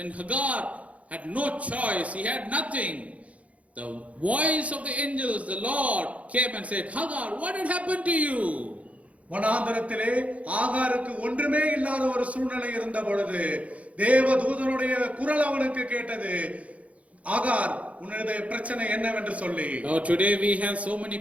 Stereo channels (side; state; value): left; late; 0.066 ms